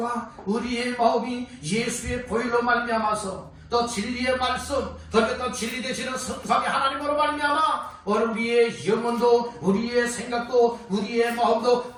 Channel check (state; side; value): identical; both; correlation 1.00